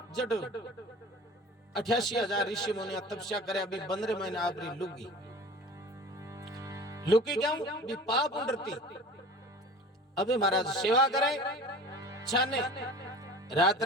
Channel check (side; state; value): both; normal; correlation 0.40